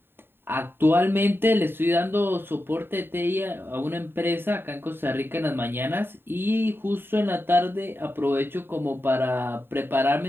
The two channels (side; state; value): left; late; 0.11 ms